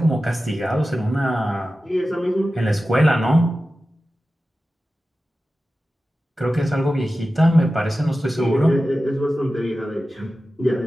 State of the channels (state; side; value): normal; both; correlation 0.94